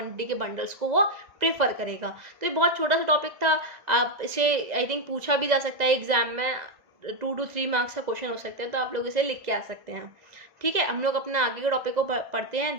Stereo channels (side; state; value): left; late; 1.9 ms